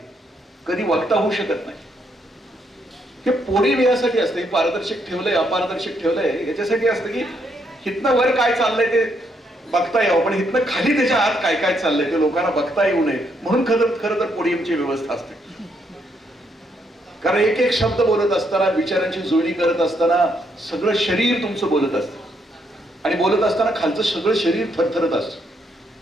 कधी वक्ता होऊ शकत नाही. हे पोडियम यासाठी असतं, हे पारदर्शक ठेवलंय अपारदर्शक ठेवलंय याच्यासाठी असतं की हितनं वर काय चाललंय ते बघता यावं, पण हितनं खाली त्याच्या आत काय काय चाललंय ते लोकांना बघता येऊ नये, म्हणून खरं तर पोडियमची व्यवस्था असते. कारण एक एक शब्द बोलत असताना, विचारांची जुळणी करत असताना सगळं शरीर तुमचं बोलत असतं, आणि बोलत असताना खालचं सगळं शरीर थरथरत असतं.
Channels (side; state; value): both; normal; correlation 0.75